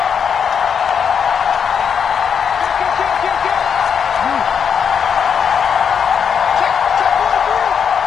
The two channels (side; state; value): right; quieter; 7.1 dB